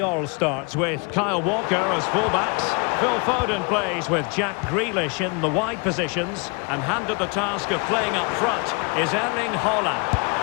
starts with Kyle Walker as fullbacks. Phil Foden plays with Jack Grealish in the wide positions. And handed the task of playing up front is Erling Haaland.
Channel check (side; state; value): right; quieter; 32.3 dB